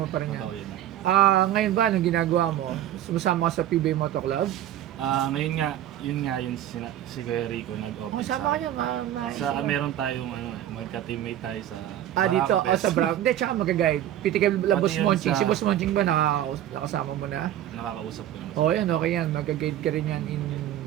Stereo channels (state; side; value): quieter; left; 11.9 dB